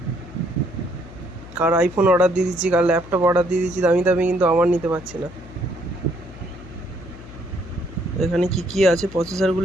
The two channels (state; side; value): noise; left; hum, 16 dB below the sound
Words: কার আইফোন অর্ডার দিয়ে দিচ্ছি, কার ল্যাপটপ অর্ডার দিয়ে দিচ্ছি দামি দামি, কিন্তু আমার নিতে পারছি না। এখানে কি কি আছে